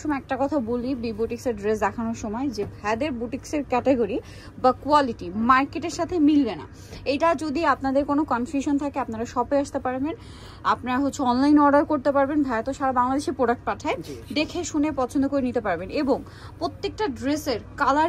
একটা কথা বলি বি বুটিক্সের ড্রেস দেখানোর সময়, যে ভাইদের বুটিক্সের ক্যাটাগরি বা কোয়ালিটি মার্কেটের সাথে মিলবে না। এটা যদি আপনাদের কোনো কনফিউশন থাকে আপনারা শপে আসতে পারবেন, আপনারা অনলাইন অর্ডার করতে পারবেন। ভাইয়া তো সারা বাংলাদেশে প্রোডাক্ট পাঠায়, দেখে শুনে পছন্দ করে নিতে পারবেন। এবং প্রত্যেকটা ড্রেসের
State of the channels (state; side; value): identical; both; correlation 1.00